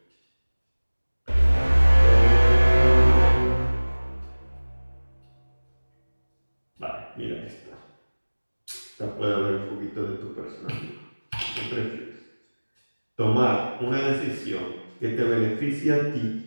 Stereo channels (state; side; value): inverted; both; correlation -1.00